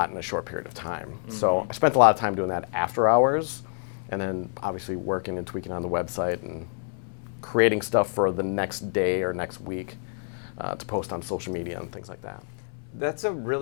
in a short period of time. So I spent a lot of time doing that after hours, and then obviously working and tweaking on the website and creating stuff for the next day or next week to post on social media and things like that. That's a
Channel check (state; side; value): silent; right; 60 dB below the other